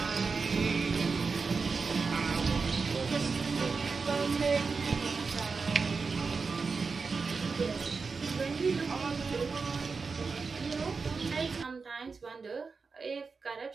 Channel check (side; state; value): left; quieter; 4.7 dB